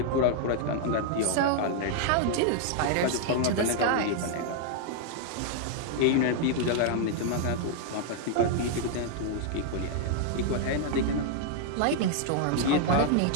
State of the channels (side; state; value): both; different; correlation 0.00